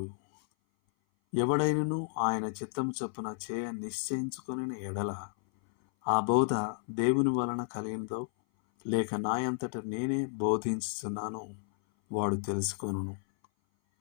ఎవడైనను ఆయన చిత్తము చొప్పున చేయ నిశ్చయించుకొనిన ఎడల ఆ బోధ దేవుని వలన కలిగినదో లేక నాయంతట నేనే బోధించుచున్నానో వాడు తెలుసుకొనును.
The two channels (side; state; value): right; silent; 56 dB below the other